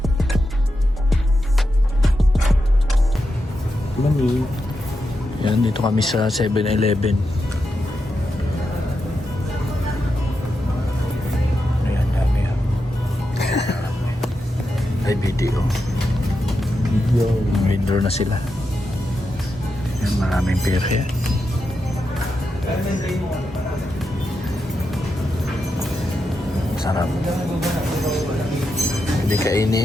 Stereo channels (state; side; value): normal; both; correlation 0.87